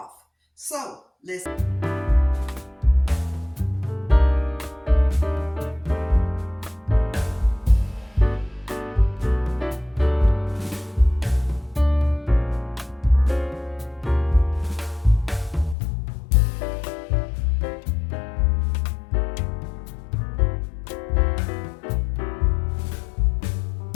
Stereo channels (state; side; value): drops out; right; at 15.8 s